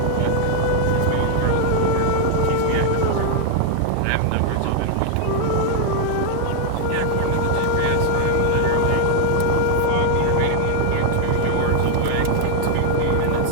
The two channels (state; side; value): different; both; correlation 0.00